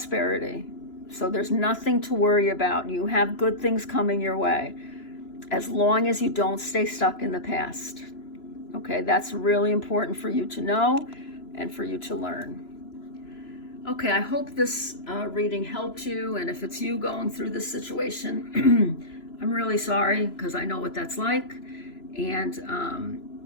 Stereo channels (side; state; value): right; late; 3.0 ms